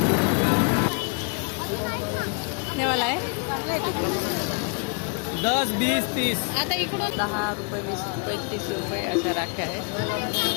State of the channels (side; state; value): right; quieter; 36.0 dB